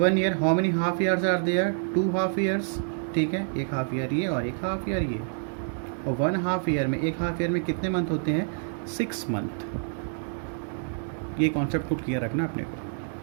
year how many half years are there, 2 half years. ठीक है, एक हाफ ईयर ये और एक हाफ ईयर ये, और 1/2 ईयर में, एक हाफ ईयर में कितने मंथ होते हैं 6 मंथ। ये कॉन्सेप्ट को क्लियर रखना अपने को।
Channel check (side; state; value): left; silent; digital silence